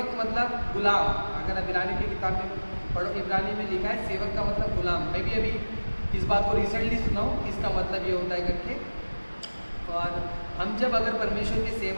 मतलब गुलाम। अगर आप इब्रानी की किताब में पढ़ो, इब्रानी में लिखा है सेवक का मतलब गुलाम। मैं भी अभी इस बात को रिसेंटली सुना हूँ कि इसका मतलब ये होता है करके। और हम जब अगर परमेश्वर के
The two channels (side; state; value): both; inverted; correlation -1.00